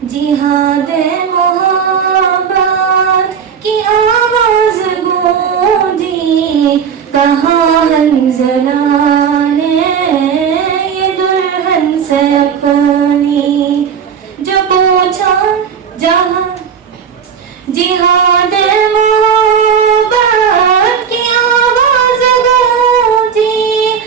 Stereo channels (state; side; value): quieter; left; 7.3 dB